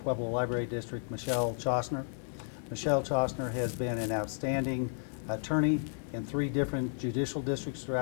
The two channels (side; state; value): right; silent; 56 dB below the other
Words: Library District, Michelle Chosner. Michelle Chostner has been an outstanding attorney in 3 different judicial districts